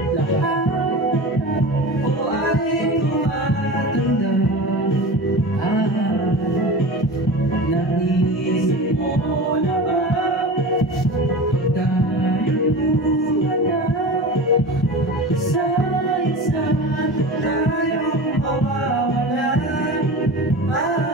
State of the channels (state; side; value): normal; both; correlation 0.31